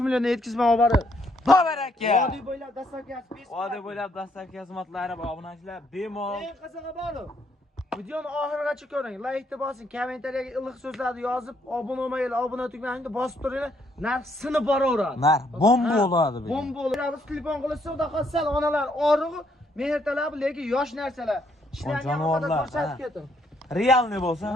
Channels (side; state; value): both; normal; correlation 0.71